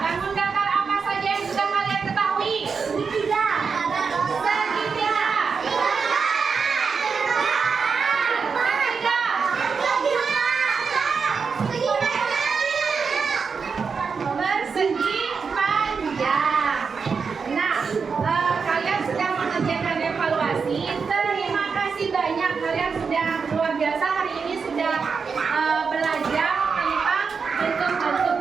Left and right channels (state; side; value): quieter; left; 5.5 dB